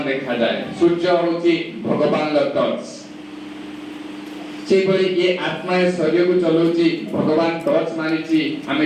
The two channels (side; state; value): both; identical; correlation 1.00